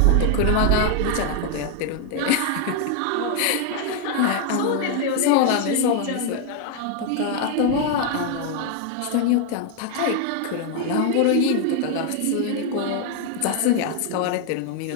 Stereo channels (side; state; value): both; different; correlation 0.00